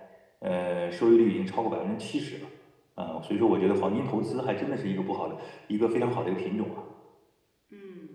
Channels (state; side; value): identical; both; correlation 1.00